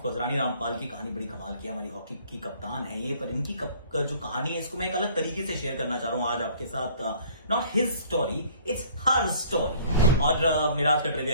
कोर्स रानी रामपाल की कहानी बड़ी कमाल की है, हमारी हॉकी की कप्तान है ये, पर इनकी जो कहानी है इसको मैं एक अलग तरीके से शेयर करना चाह रहा हूं आज आपके साथ। Not his story, it's her story. और मेरा आज का ट्रिविया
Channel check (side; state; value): both; inverted; correlation -0.54